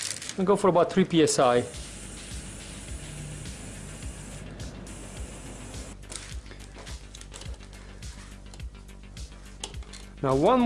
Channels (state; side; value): identical; both; correlation 1.00